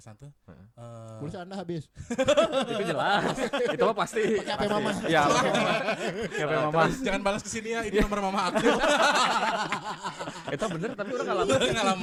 tuh. Pulsa Anda habis. Itu jelas. Itu mah pasti. Pakai HP mama. Iya, pakai mama. Siapa yang mama? Jangan balas ke sini ya, ini nomor mama aku. Itu bener tapi udah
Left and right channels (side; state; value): both; identical; correlation 1.00